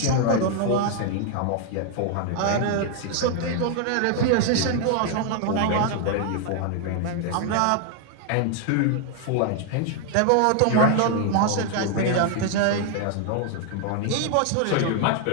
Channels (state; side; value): different; both; correlation 0.00